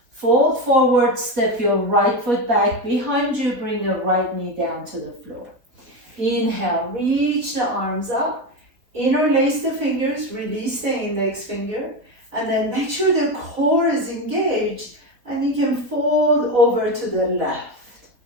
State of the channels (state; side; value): late; left; 4.1 ms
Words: fold forward, step your right foot back behind you, bring the right knee down to the floor. Inhale, reach the arms up, interlace the fingers, release the index finger, and then make sure the core is engaged and you can fold over to the left.